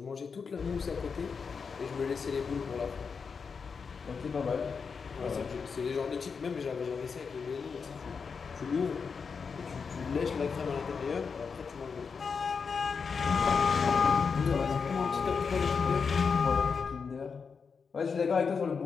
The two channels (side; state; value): right; quieter; 5.6 dB